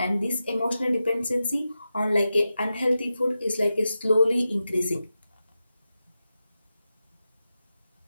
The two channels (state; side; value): inverted; both; correlation -0.91